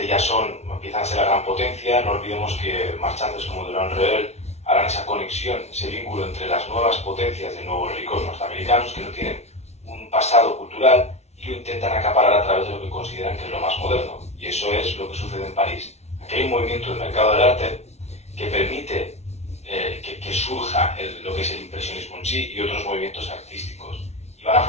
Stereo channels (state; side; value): late; right; 0.31 ms